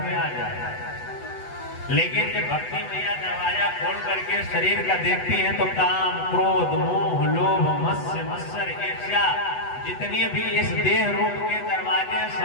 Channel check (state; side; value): late; right; 8.1 ms